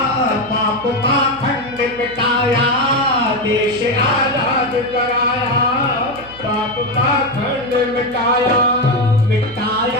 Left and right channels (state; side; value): noise; right; hum, 20 dB below the sound